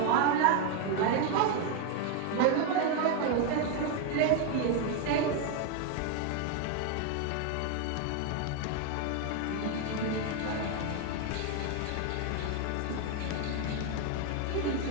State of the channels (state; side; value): different; both; correlation 0.01